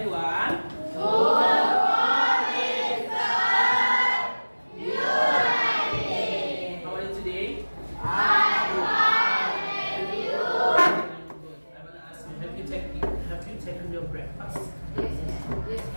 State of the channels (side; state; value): both; inverted; correlation -1.00